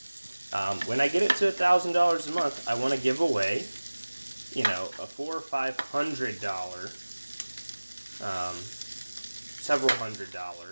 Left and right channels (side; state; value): both; inverted; correlation -1.00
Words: When I get it to $1,000 a month, I want to give away, a $400 or $500, several